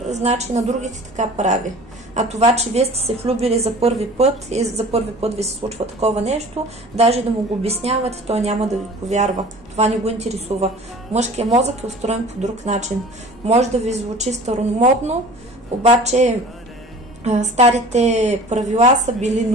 значи на другите така прави. А това, че вие сте се влюбили за първи път и за първи път ви се случва такова нещо, даже да му го обяснявате, той няма да ви повярва. Това не го интересува. Мъжкият мозък е устроен по друг начин. Може да ви звучи старомодно, обаче старите правила са били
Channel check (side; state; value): both; normal; correlation 0.43